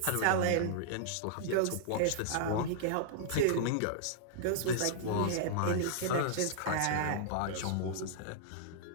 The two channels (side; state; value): both; different; correlation -0.01